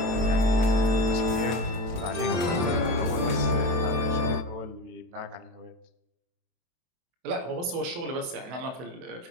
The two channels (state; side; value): late; left; 23 ms